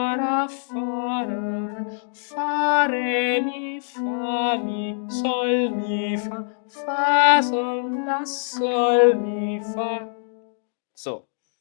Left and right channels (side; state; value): right; silent; digital silence